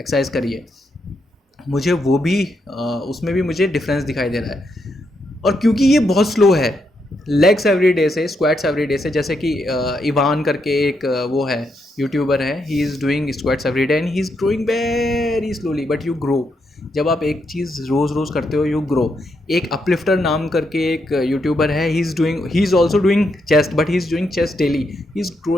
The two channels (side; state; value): both; normal; correlation 0.80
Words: एक्सरसाइज करी है, मुझे वो भी उसमें भी मुझे डिफरेंस दिखाई दे रहा है। और क्योंकि ये बहुत स्लो है, लेग्स एवरीडे से, स्क्वाट्स एवरीडे से, जैसे कि इवान करके एक वो है यूट्यूबर है, he is doing squats everyday and he is growing very slowly, but you grow. जब आप एक चीज़ रोज़ करते हो यू ग्रो। एक अपलिफ्टर नाम करके एक यूट्यूबर है, he is also doing chest, but he is doing chest daily, he is